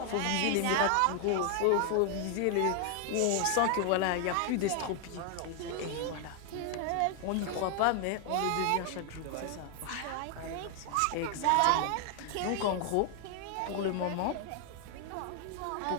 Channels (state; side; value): different; both; correlation 0.00